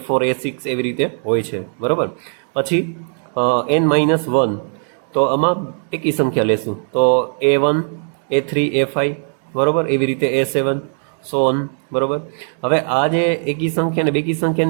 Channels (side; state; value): left; silent; 61 dB below the other